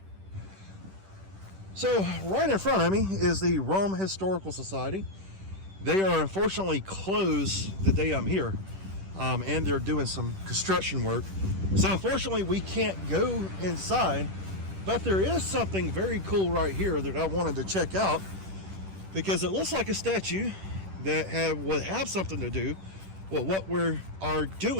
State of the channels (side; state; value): left; late; 10 ms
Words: So right in front of me is the Rome Historical Society. They are unfortunately closed the day I'm here, and they're doing some construction work. So unfortunately we can't go inside, but there is something very cool right here that I wanted to check out because it looks like a statue that would have something to do with what we are